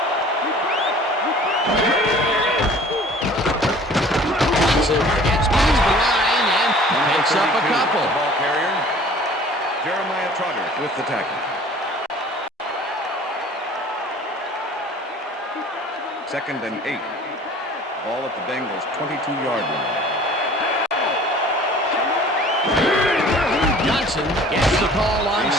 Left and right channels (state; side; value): normal; both; correlation 0.48